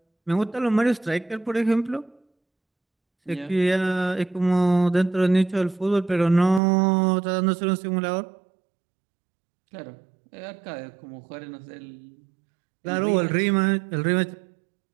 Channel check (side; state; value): left; drops out; at 6.6 s